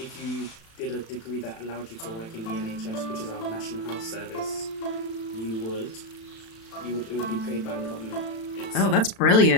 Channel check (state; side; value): late; right; 36 ms